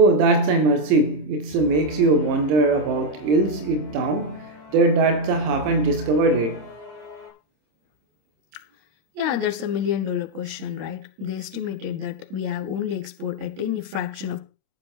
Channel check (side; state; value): left; late; 26 ms